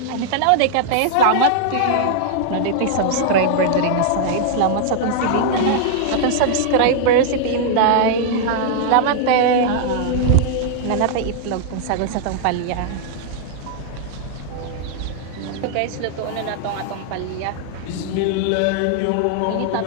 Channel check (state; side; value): different; both; correlation -0.01